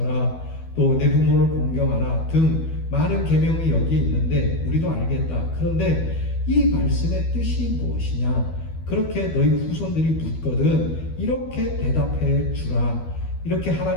또 내 부모를 공경하라 등 많은 계명이 여기에 있는데 우리도 알겠다. 그런데 이 말씀의 뜻이 무엇이냐? 그렇게 너희 후손들이 묻거든 이렇게 대답해 주라. 이렇게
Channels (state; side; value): late; right; 12 ms